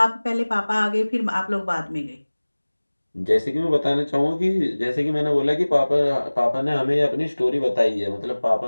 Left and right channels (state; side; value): inverted; both; correlation -1.00